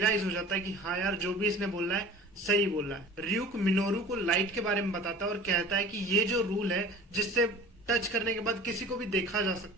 हो जाता है कि हाँ यार जो भी इसने बोला है सही बोला है। ryuk मिनोरू को लाइट के बारे में बताता है और कहता है कि ये जो रूल है जिससे टच करने के बाद किसी को भी देखा जा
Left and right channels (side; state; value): both; normal; correlation 0.42